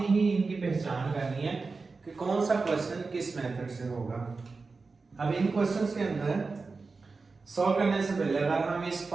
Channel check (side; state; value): left; quieter; 4.2 dB